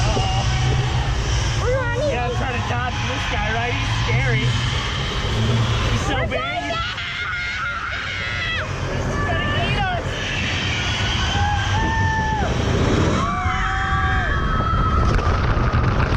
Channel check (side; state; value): both; identical; correlation 1.00